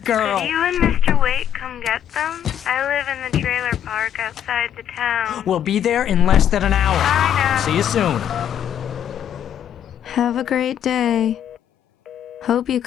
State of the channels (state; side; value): quieter; right; 9.9 dB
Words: girl. Could you and Mr. Wake come get them? I live in the trailer park outside the town. We'll be there in less than an hour. Bye now. See you soon. Have a great day. Hope you